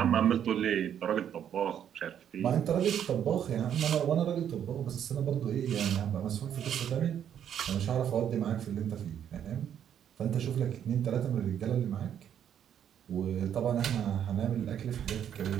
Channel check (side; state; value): left; quieter; 9.4 dB